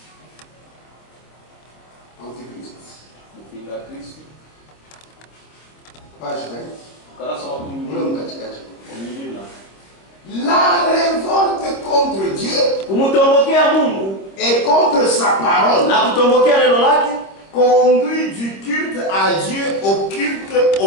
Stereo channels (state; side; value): late; right; 26 ms